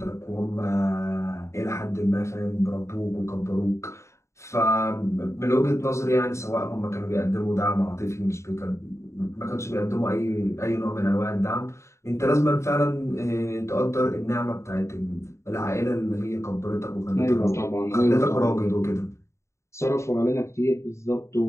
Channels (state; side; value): late; right; 0.14 ms